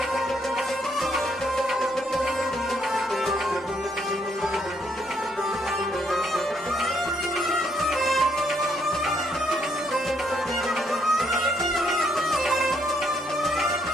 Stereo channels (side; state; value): both; normal; correlation 0.72